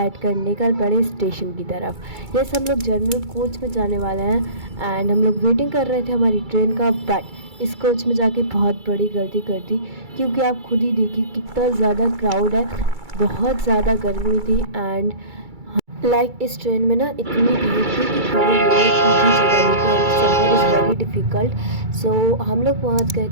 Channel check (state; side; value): late; left; 2.3 ms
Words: कर निकल पड़े स्टेशन की तरफ। यस, हम लोग जनरल कोच में जाने वाले हैं एंड हम लोग वेटिंग कर रहे थे हमारी ट्रेन का, बट इस कोच में जाके बहुत बड़ी गलती कर दी, क्योंकि आप खुद ही देखिए कितना ज़्यादा क्राउड है, बहुत ज़्यादा गर्मी थी। एंड इस ट्रेन में ना इतनी भीड़ थी कि खड़े होने की भी जगह नहीं थी एंड सफ़र इज़ वेरी डिफ़िकल्ट। सो हम लोग पहुंच गए